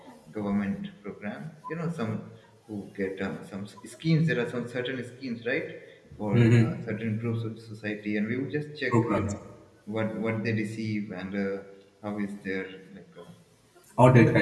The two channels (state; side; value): identical; both; correlation 1.00